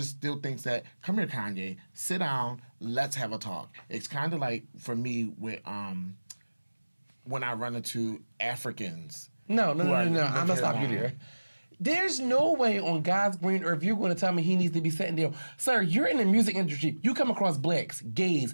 still think that, come here, Kanye, sit down, let's have a talk. It's kind of like, for me, with when I run into Africans. No. I'm going to stop you there. There's no way on God's green earth you're going to tell me he needs to be sitting there. Sir, you're in the music industry. You come across blacks, gays,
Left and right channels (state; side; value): inverted; both; correlation -1.00